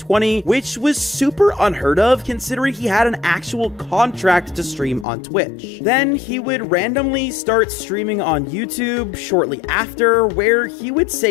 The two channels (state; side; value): drops out; right; at 5.1 s